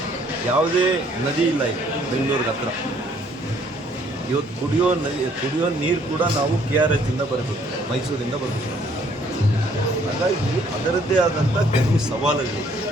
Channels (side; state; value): both; normal; correlation 0.63